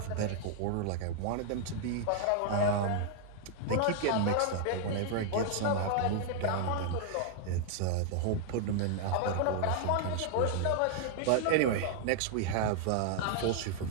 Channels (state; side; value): different; both; correlation 0.00